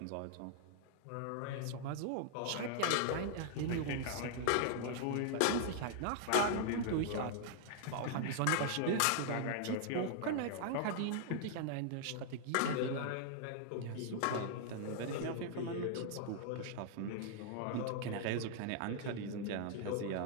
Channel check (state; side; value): different; both; correlation 0.00